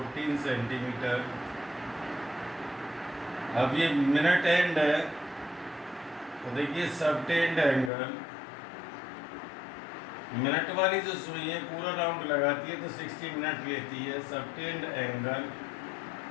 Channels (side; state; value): right; drops out; at 7.9 s